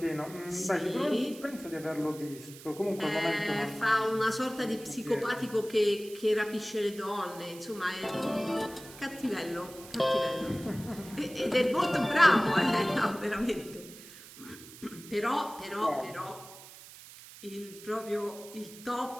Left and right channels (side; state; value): right; noise; hiss, 17 dB below the sound